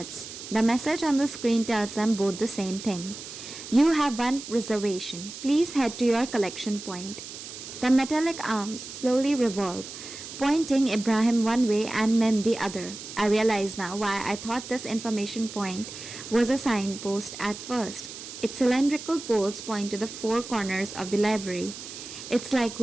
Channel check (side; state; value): right; noise; hiss, 11 dB below the sound